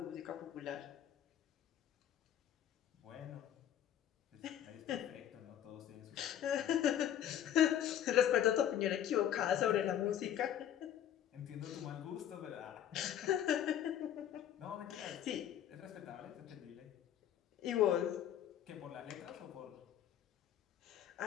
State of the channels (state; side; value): quieter; right; 10.5 dB